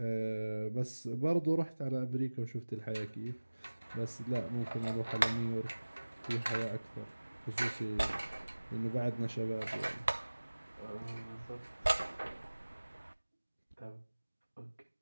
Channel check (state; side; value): inverted; both; correlation -1.00